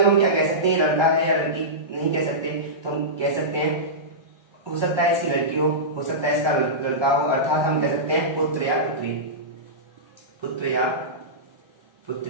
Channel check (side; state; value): left; late; 1.2 ms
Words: हम क्या कह सकते हैं, लड़का है या लड़की, नहीं कह सकते। तो हम कह सकते हैं हो सकता है इसकी लड़की हो सकता है इसका लड़का हो, अर्थात हम कह सकते हैं पुत्र या पुत्री, पुत्र या